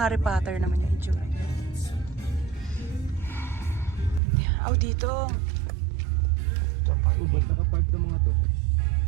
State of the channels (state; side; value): drops out; left; at 4.2 s